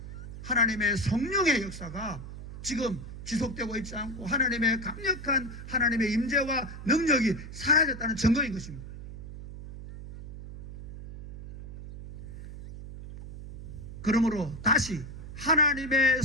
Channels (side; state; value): right; noise; hum, 12 dB below the sound